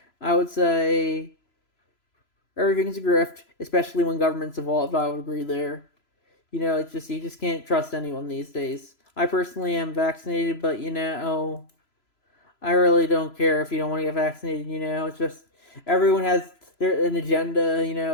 I would say everything's a grift, especially when government's involved. I would agree there. It's just, you just can't trust anyone these days. I personally am vaccinated, but I really don't care if you don't want to get vaccinated. It's just everyone has an agenda.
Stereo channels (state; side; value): late; right; 3.0 ms